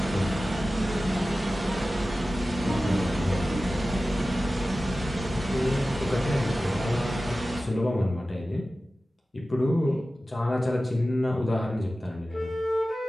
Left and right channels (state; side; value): normal; both; correlation 0.95